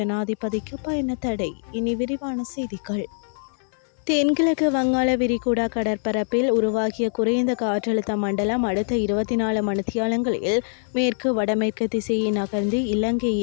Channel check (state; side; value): silent; right; digital silence